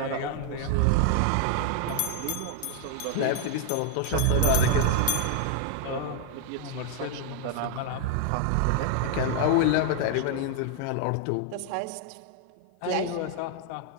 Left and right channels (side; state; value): both; different; correlation 0.00